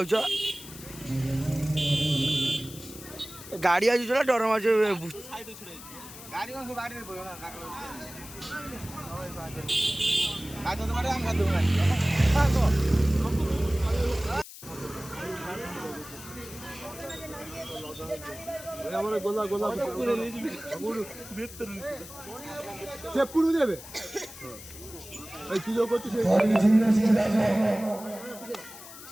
गाड़ी आज चला डर मार गाड़ी कौन से गाड़ी में আমার গোলা গোলা সে পুরো দেবে এই কি যোগ করছিস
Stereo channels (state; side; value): noise; left; hiss, 15 dB below the sound